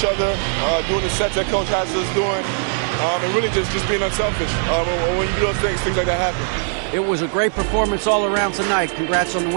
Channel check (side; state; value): left; silent; 57 dB below the other